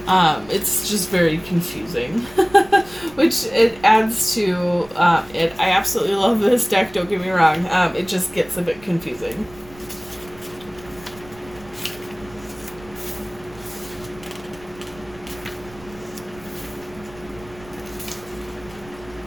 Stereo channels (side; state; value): right; noise; rumble, 21 dB below the sound